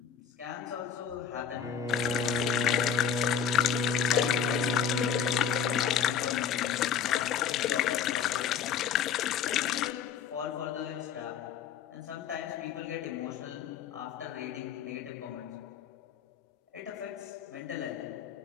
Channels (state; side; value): quieter; right; 7.8 dB